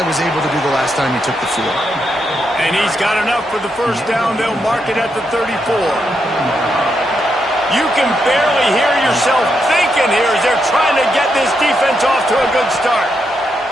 was able to do the last time he took the field. And he's got enough for the first down. They'll mark it at the 34. You can barely hear yourself thinking here as they're trying to get this defense off to a good start.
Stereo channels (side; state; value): both; normal; correlation 0.82